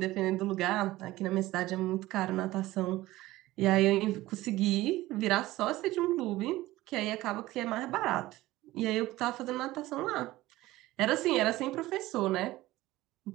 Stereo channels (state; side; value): quieter; left; 17.4 dB